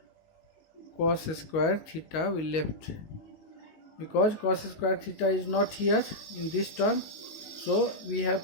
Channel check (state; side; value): late; right; 19 ms